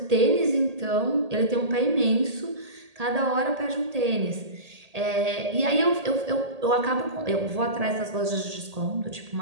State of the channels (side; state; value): left; late; 1.8 ms